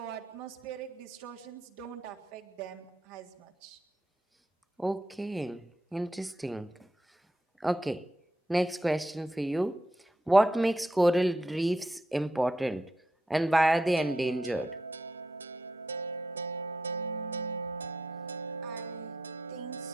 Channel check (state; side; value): normal; both; correlation 0.84